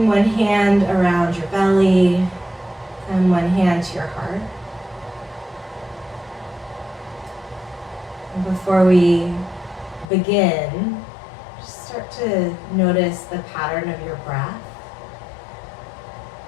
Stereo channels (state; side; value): drops out; right; at 10.1 s